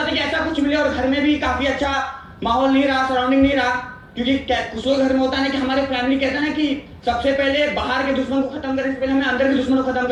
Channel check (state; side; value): identical; both; correlation 1.00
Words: था कि ऐसा कुछ मिले। और घर में भी काफी अच्छा माहौल नहीं रहा, सराउंडिंग नहीं रहा, क्योंकि कुछ लोग घर में होता है कि हमारे फैमिली कहता है ना कि सबसे पहले बाहर के दुश्मन को खत्म करने से पहले हमें अंदर के दुश्मन को खत्म